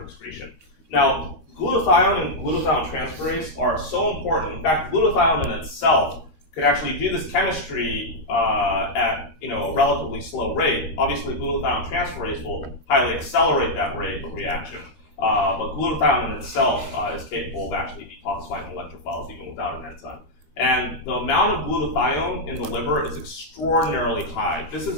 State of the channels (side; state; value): right; late; 13 ms